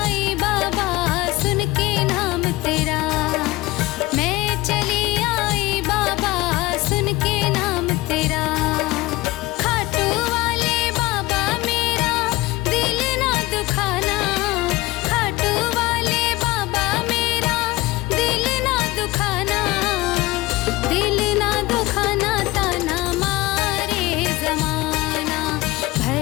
बाबा सुन के नाम तेरा, मैं चली आई बाबा सुन के नाम तेरा, खाटू वाले बाबा मेरा दिल ना दुखाना, खाटू वाले बाबा मेरा दिल ना दुखाना, दिल ना दुखाना ताना मारे जमाना,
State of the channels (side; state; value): right; quieter; 20.1 dB